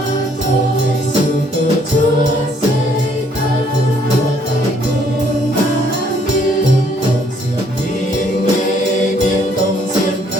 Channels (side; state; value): both; normal; correlation 0.65